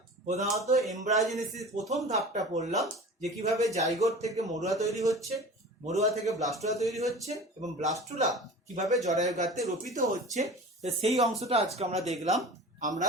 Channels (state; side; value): normal; both; correlation 0.37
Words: প্রধানত এমব্রায়োজেনেসিস প্রথম ধাপটা পড়লাম, যে কিভাবে জাইগোট থেকে মরুয়া তৈরি হচ্ছে, মরুয়া থেকে ব্লাস্টুলা তৈরি হচ্ছে, এবং ব্লাস্টুলা কিভাবে জরায়ু গাত্রে রোপিত হচ্ছে, তো সেই অংশটা আজকে আমরা দেখলাম। আমরা